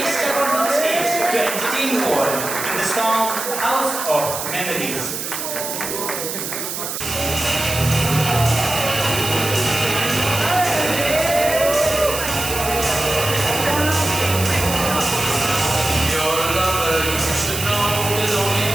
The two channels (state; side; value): noise; right; hiss, 5 dB below the sound